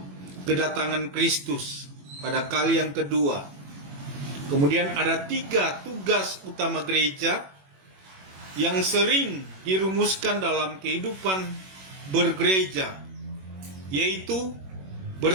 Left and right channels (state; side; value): late; left; 21 ms